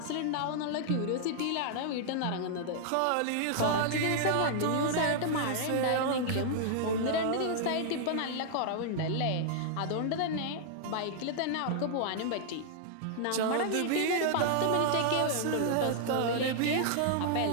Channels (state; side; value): different; both; correlation -0.01